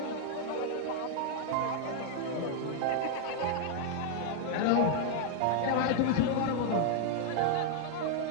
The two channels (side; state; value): both; different; correlation 0.00